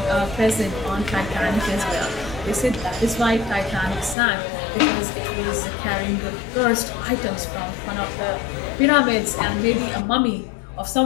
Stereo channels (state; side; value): drops out; right; at 4.2 s